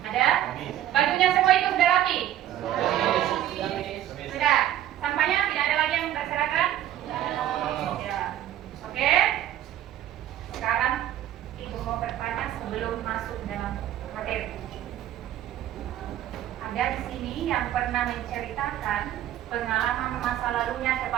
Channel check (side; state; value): left; quieter; 12.2 dB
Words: Ada? Bajunya semua itu sudah rapi? Sudah. Sampahnya tidak ada lagi yang berserakan? Ya. Oke. Sekarang Ibu mau bertanya sebelum masuk dalam materi. Ada di sini yang pernah menceritakan pengalaman masa lalunya